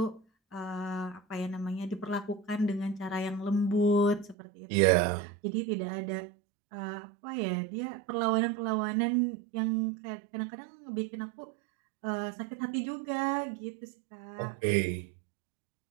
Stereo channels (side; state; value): left; drops out; at 4.4 s